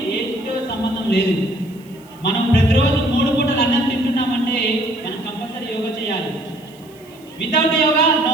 ఏజ్తో సంబంధం లేదు. మనం ప్రతిరోజు 3 పూటలు అన్నం తింటున్నామంటే మనం కంపల్సరీ యోగా చేయాలి. Without yoga no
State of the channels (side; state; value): right; noise; hiss, 27 dB below the sound